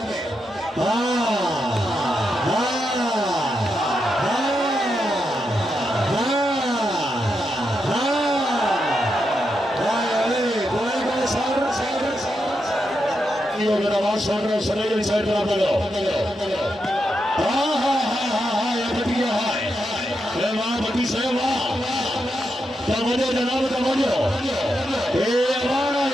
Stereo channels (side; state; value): both; normal; correlation 0.84